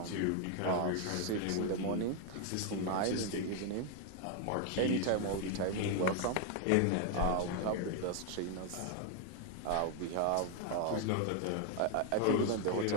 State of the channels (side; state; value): both; different; correlation 0.01